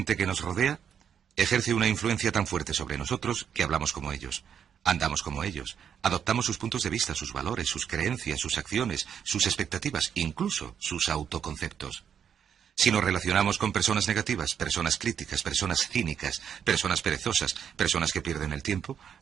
que nos rodea ejerce una influencia tan fuerte sobre nosotros que hablamos como ellos, andamos como ellos, adoptamos sus puntos de vista, sus valores, sus creencias, sus acciones, sus expectativas, incluso sus autoconceptos. Si nos relacionamos con personas negativas, personas críticas, personas cínicas, personas perezosas, personas que pierden el tiempo,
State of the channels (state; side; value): quieter; left; 8.1 dB